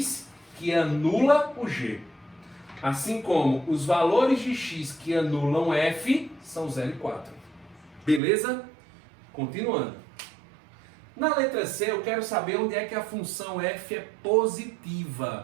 que anula o g. Assim como os valores de x que anulam f são 0 e 4. Beleza? Continuando. Na letra C, eu quero saber onde é que a função f é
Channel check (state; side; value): drops out; left; at 8.2 s